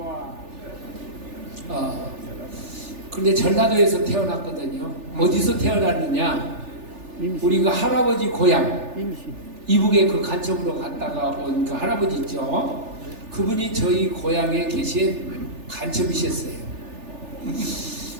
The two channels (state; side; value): late; left; 3.4 ms